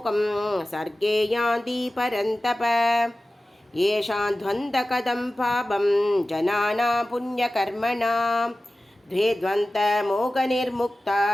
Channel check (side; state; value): both; normal; correlation 0.96